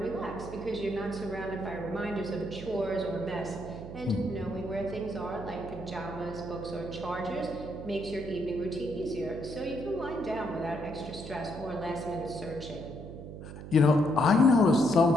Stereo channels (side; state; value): right; noise; hum, 11 dB below the sound